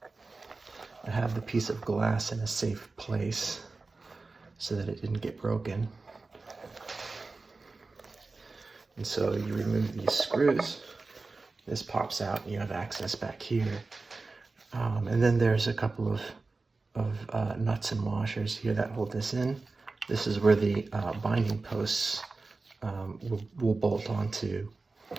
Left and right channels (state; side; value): quieter; left; 3.7 dB